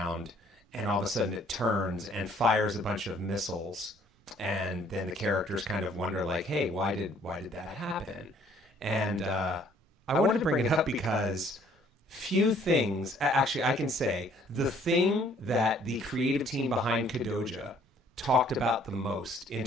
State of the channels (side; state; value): both; normal; correlation 0.60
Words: and all of a sudden it turns and fires a bunch of missiles. And then the characters kind of wonder, like, hey, why did that happen? And I wanted to bring it up because few things, actually I can say, the thing that the creative team behind Kodoja talked about the most in